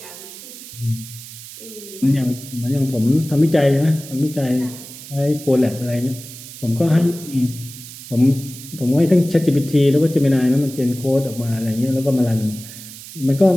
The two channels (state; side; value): noise; right; hiss, 15 dB below the sound